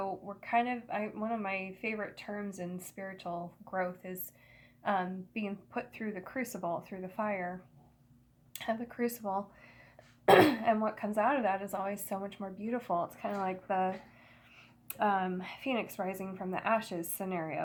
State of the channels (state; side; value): identical; both; correlation 1.00